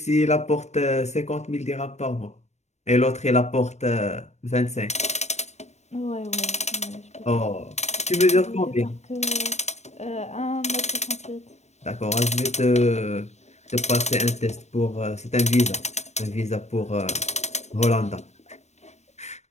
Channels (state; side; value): late; right; 0.32 ms